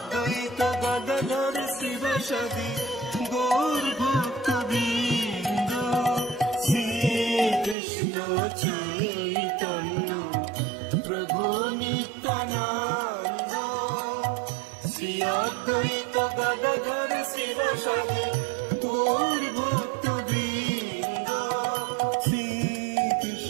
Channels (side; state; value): left; drops out; at 7.8 s